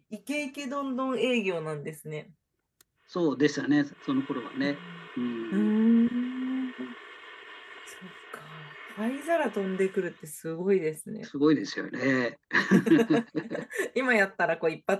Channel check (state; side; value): identical; both; correlation 1.00